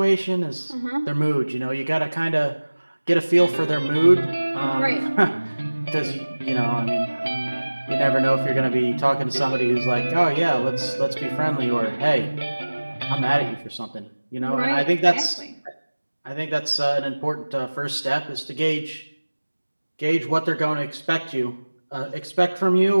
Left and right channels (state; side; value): inverted; both; correlation -1.00